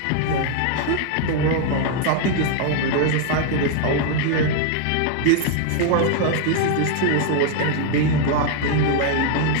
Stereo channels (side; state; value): both; different; correlation 0.00